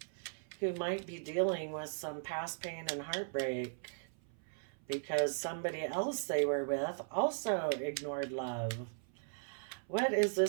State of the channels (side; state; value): left; silent; 53 dB below the other